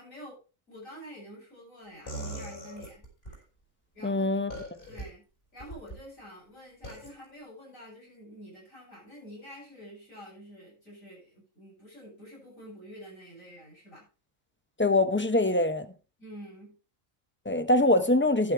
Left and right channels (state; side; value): normal; both; correlation 0.00